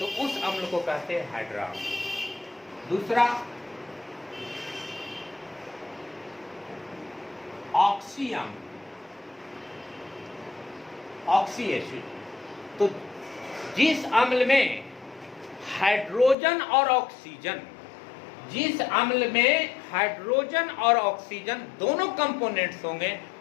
उस अम्ल को कहते हैं हाइड्रा अम्ल। दूसरा ऑक्सी अम्ल, ऑक्सी एसिड। तो जिस अम्ल में हाइड्रोजन और ऑक्सीजन, जिस अम्ल में हाइड्रोजन और ऑक्सीजन दोनों कंपोनेंट्स होंगे,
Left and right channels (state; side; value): drops out; right; at 16.4 s